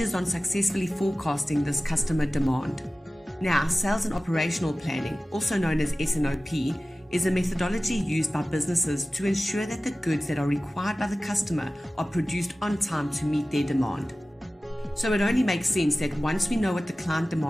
on successfully forecasting this customer demand. Now, sales and operational planning, also known as S&OP, is a methodology used by businesses to ensure that the goods that are required by the customer are produced on time to meet their demand. So it only makes sense that once we know what the client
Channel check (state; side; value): normal; both; correlation 0.96